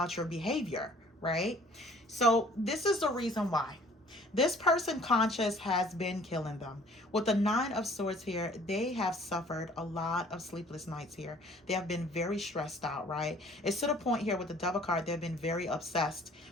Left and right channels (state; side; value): normal; both; correlation 0.55